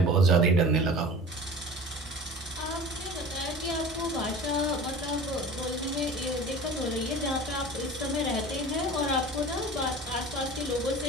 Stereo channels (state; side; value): normal; both; correlation 0.38